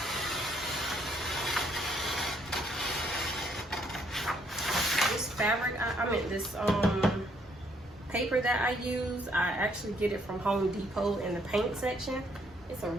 fabric, I meant this paper that I use, I actually get it from Home Depot in the paint section. It's a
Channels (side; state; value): both; normal; correlation 0.68